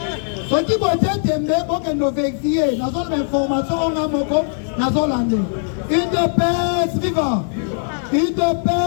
Ce qui peut être aimé, pour que nous vérifions, nous avons l'information, on a moko, nous avons l'année. Une de paix viva. Une de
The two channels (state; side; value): silent; right; 66 dB below the other